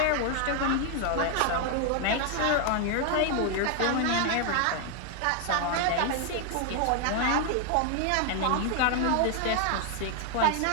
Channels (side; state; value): both; different; correlation 0.00